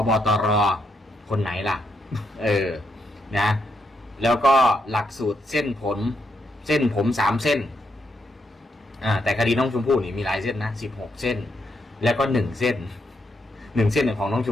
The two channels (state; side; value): normal; both; correlation 0.79